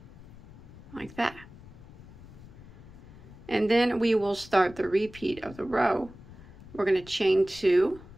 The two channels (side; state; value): left; noise; rumble, 19 dB below the sound